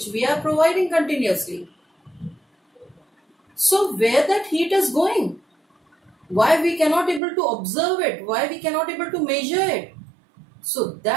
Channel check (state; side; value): drops out; left; at 7.2 s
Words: we are providing continuously. So where that heat is going? Why we cannot able to observe it? Why we cannot able to measure it? So